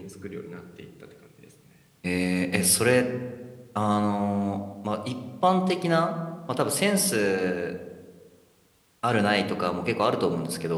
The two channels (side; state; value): both; identical; correlation 1.00